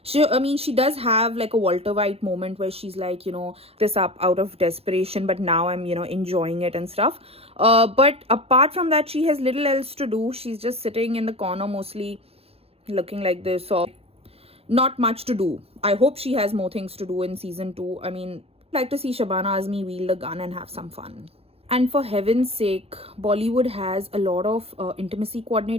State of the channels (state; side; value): late; left; 0.29 ms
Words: She does have like a Walter White moment where she's like, this up out of desperation, but now I'm, enjoying it and stuff. But apart from that, she has little else to do. She's just sitting in the corner mostly looking like this, or not much to do. I hope she has more things to do in season 2. Like to see Shabana Azmi wield a gun and have some fun. And for heaven's sake, Bollywood has a lot of intimacy